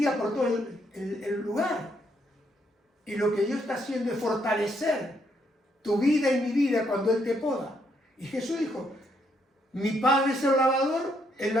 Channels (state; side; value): normal; both; correlation 0.74